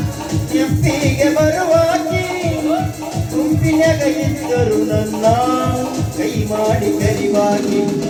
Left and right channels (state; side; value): identical; both; correlation 1.00